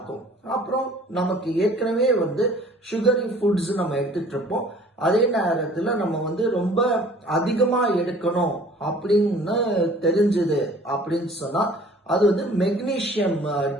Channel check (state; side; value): normal; both; correlation 0.51